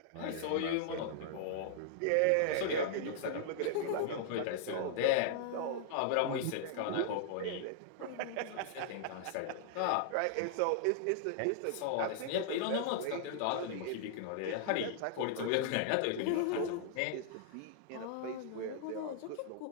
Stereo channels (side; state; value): both; different; correlation -0.01